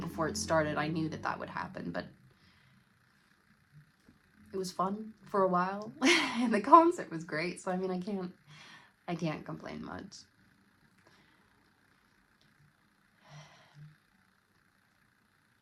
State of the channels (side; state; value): both; identical; correlation 1.00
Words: it started, I knew that would happen, but it was fun for a while. And the concert was great, so I mean, I can't complain much.